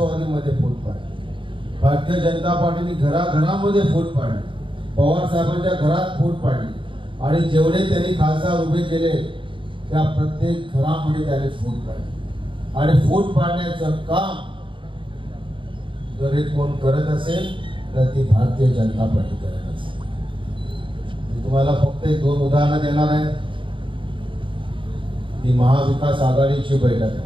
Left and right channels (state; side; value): late; left; 0.24 ms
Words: फूट पाडली, भारतीय जनता पार्टीने घराघरामध्ये फूट पाडली, पवार साहेबांच्या घरात फूट पाडली आणि जेवढे त्यांनी खासदार उभे केले त्या प्रत्येक घरामध्ये त्यांनी फूट पाडली. आणि फूट पाडण्याचं काम जर हे कोण करत असेल तर ती भारतीय जनता पार्टी करत असेल. मी तुम्हाला फक्त 1-2 उदाहरणं देणार आहे. ती महाविकास आघाडीची बैठक आहे